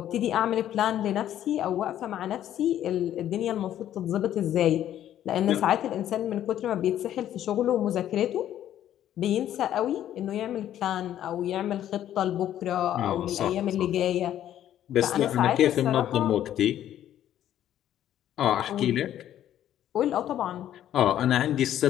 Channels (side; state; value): right; quieter; 11.5 dB